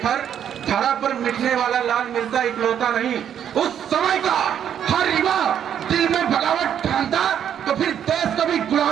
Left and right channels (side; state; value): left; quieter; 9.3 dB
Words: धरा पर मिटने वाला लाल मिलता इकलौता नहीं। उस समय का हर युवा दिल में बगावत ठानता तो फिर देश कभी